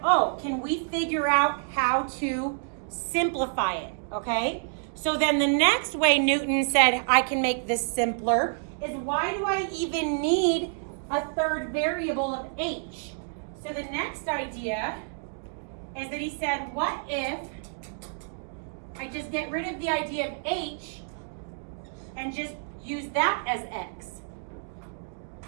oh, can we figure out how to simplify it, okay? So then the next way Newton said I can make this simpler is, why do I even need a third variable of H? So the next idea is that he said, what if I just get rid of the idea of H and just use that as X?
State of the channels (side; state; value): left; silent; digital silence